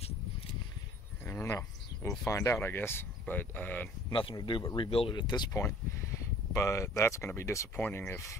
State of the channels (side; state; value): both; normal; correlation 0.52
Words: don't know. We'll find out, I guess. But nothing to do but rebuild it at this point. But that's going to be disappointing if